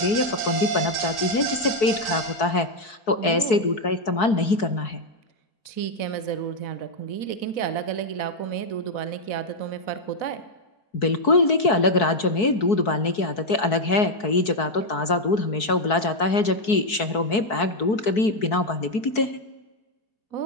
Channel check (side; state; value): right; late; 4.6 ms